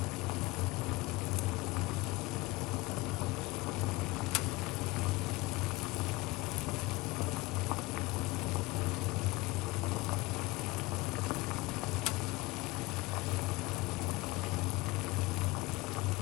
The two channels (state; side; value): quieter; right; 21.7 dB